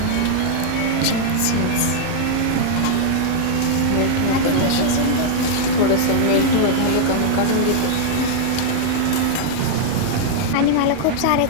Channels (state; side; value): different; both; correlation -0.01